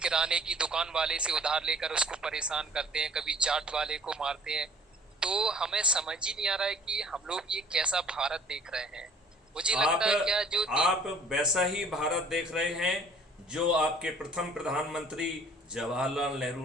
की दुकान वाले से उधार लेकर उसको परेशान करते हैं, कभी चाट वाले को मारते हैं। तो हमें समझ ही नहीं आ रहा है कि हम लोग ये कैसा भारत देख रहे हैं। मुझे आप लगता है क्या जो आप वैसा ही भारत देख रहे हैं जो आपके प्रथम प्रधानमंत्री जवाहरलाल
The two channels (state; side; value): normal; both; correlation 0.53